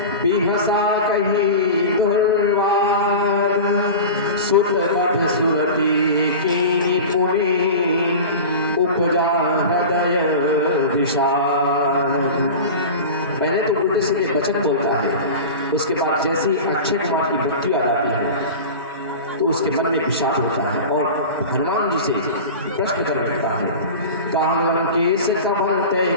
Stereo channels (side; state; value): both; inverted; correlation -0.31